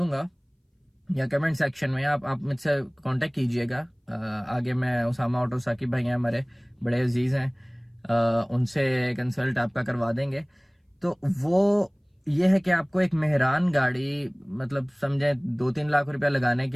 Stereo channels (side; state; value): both; identical; correlation 1.00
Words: या कमेंट सेक्शन में, आप मुझसे कांटेक्ट कीजिएगा। आगे मैं उसामा ऑटो साकिब भाई हैं हमारे, बड़े अजीज हैं, उनसे कंसल्ट आपका करवा देंगे। तो वो ये है कि आपको एक मेहरान गाड़ी, मतलब समझे 2-3 लाख रुपया लगाने